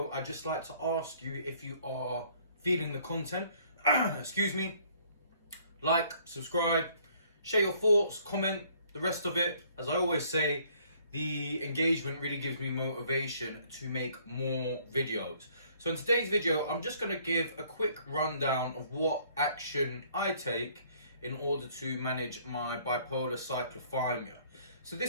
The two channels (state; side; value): inverted; both; correlation -0.61